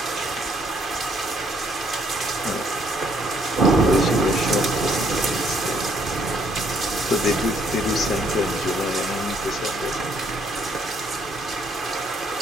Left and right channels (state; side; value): normal; both; correlation 0.68